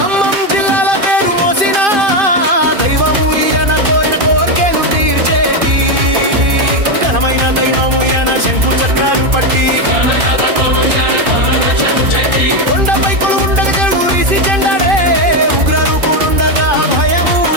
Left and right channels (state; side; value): late; left; 2.5 ms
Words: జిల్లాల పేరు మోసిన దైవము